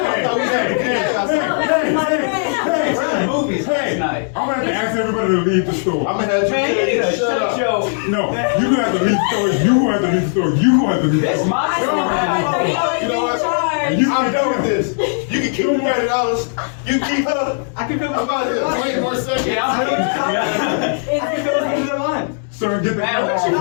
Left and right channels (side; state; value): right; silent; 67 dB below the other